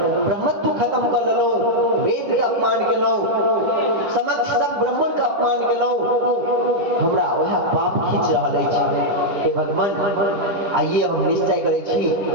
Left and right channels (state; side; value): late; left; 10 ms